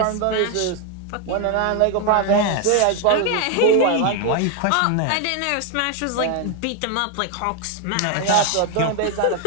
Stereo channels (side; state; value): both; different; correlation 0.01